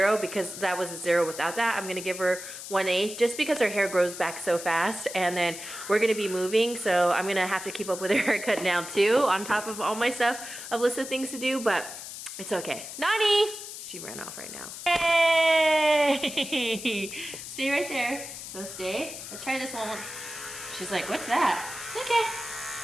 because that was a 0 without that. I'm gonna give her 1/8 just because her hair grows back so fast, and then we're gonna be moving, so I'm gonna have to keep up with her haircut now too, on top of all my stuff, a list of things to do, but it's okay. Nani! She ran off right now. Hey! Stay right there. So stay. Let's try this one. She's like, what's that? Okay.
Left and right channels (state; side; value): noise; left; hiss, 10 dB below the sound